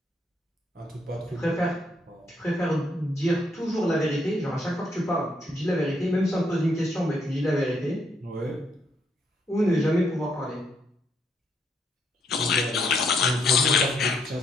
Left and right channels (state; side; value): normal; both; correlation 0.73